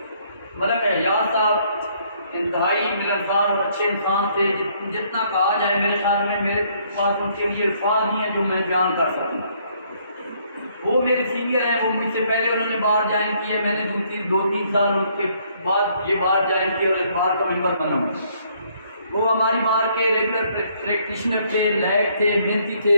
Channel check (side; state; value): both; inverted; correlation -0.67